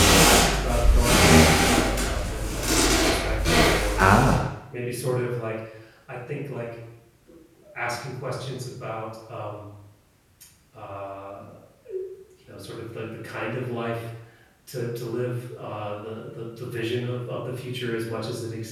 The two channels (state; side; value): identical; both; correlation 1.00